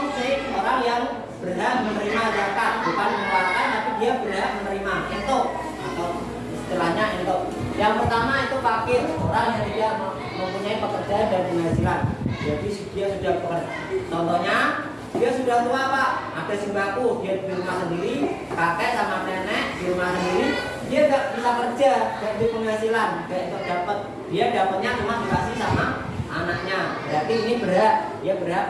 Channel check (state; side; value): identical; both; correlation 1.00